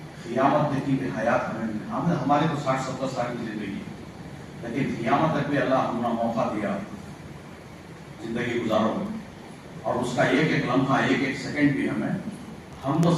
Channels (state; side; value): identical; both; correlation 1.00